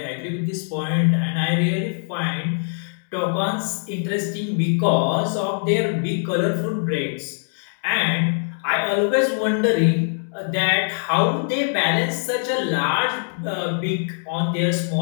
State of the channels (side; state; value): right; silent; digital silence